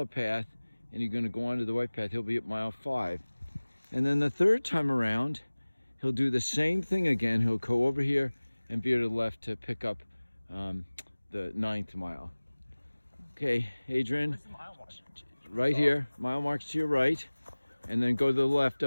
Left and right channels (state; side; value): inverted; both; correlation -1.00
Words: path and you're going to go onto the white path. He'll be at mile 5. And then the third time around, he'll do the same thing again. He'll go over here and veer to the left to pick up the 9th mile. Okay, Adrian, Where's the mile mark? right here, mile marks to your right, and then go to the left